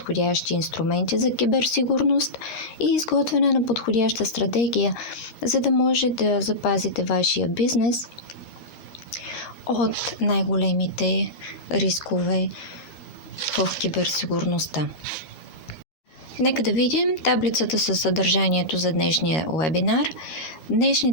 инструменти за киберсигурност и изготвяне на подходяща стратегия, за да може да запазите вашия бизнес от най-големите рискове в киберсигурността. Нека да видим таблицата със съдържанието за днешния вебинар.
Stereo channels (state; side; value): late; right; 13 ms